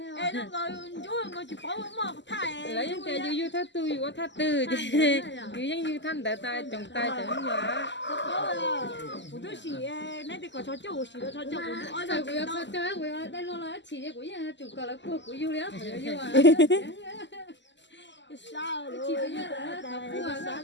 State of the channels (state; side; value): late; right; 0.53 ms